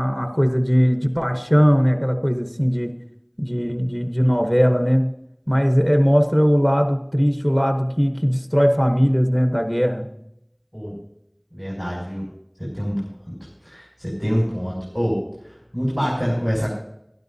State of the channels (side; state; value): both; identical; correlation 1.00